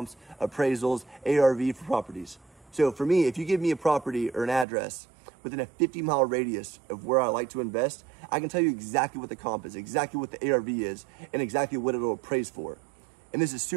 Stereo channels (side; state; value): left; drops out; at 4.7 s